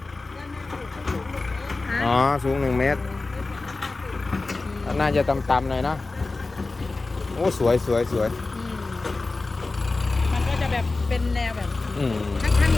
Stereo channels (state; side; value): quieter; right; 3.5 dB